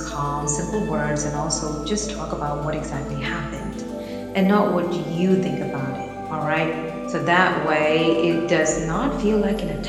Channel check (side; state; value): both; identical; correlation 1.00